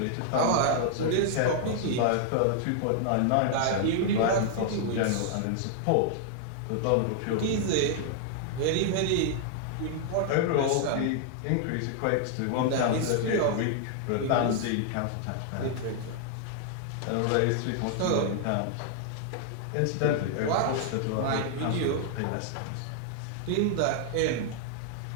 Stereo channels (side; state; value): both; different; correlation -0.01